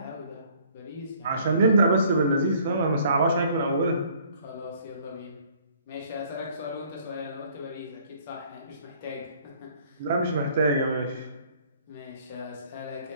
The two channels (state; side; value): inverted; both; correlation -0.58